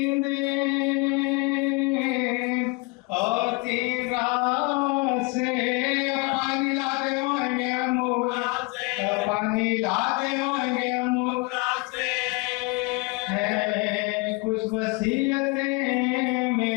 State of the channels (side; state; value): right; quieter; 27.1 dB